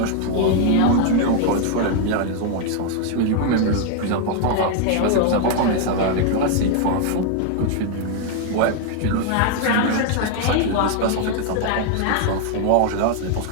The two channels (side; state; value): both; different; correlation 0.00